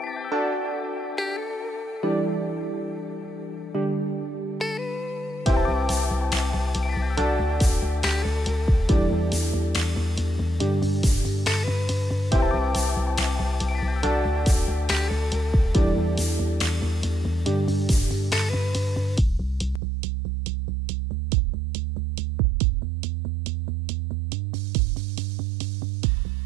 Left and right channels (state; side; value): drops out; left; at 19.8 s